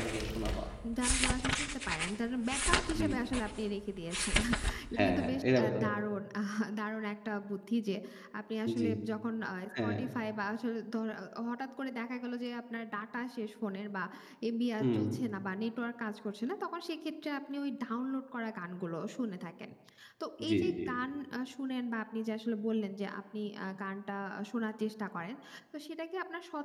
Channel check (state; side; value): identical; both; correlation 1.00